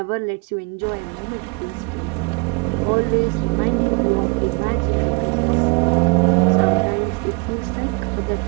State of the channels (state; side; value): quieter; left; 30.0 dB